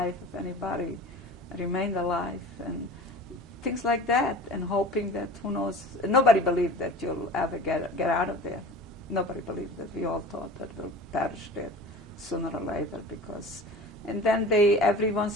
if anybody remained alive, and things like that, and hoping that, who knows, nobody believed that you'll ever get out of there. Nobody believed that. We all thought that we'll perish there sooner or later, because, and then every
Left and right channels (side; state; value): both; normal; correlation 0.38